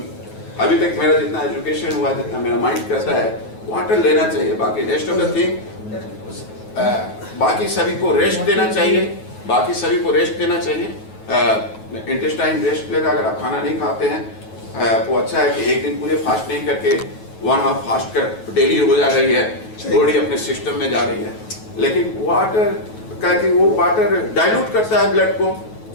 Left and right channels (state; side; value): late; right; 9.3 ms